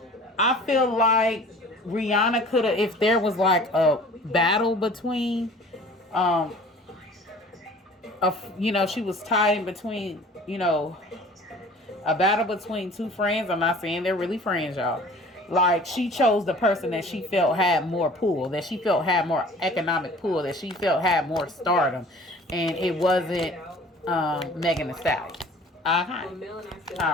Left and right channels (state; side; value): normal; both; correlation 0.47